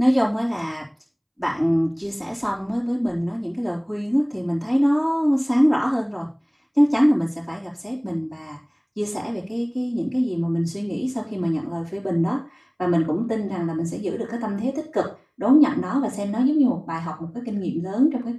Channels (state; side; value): identical; both; correlation 1.00